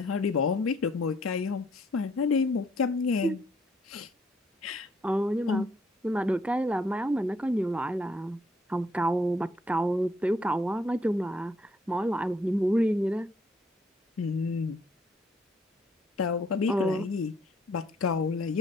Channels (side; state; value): both; normal; correlation 0.67